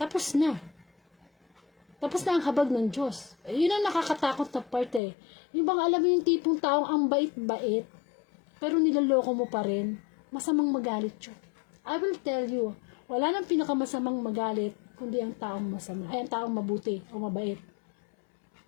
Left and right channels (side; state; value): right; drops out; at 5.0 s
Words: Tapos na. Tapos na ang habag ng Diyos. Yun ang nakakatakot na part eh. Yung bang alam mo yung tipong taong ang bait-bait, pero nilaloko mo pa rin, masamang magalit yun. I will tell you, wala nang pinakamasamang magalit, kundi ang taong masama, ay ang taong mabuti o mabait.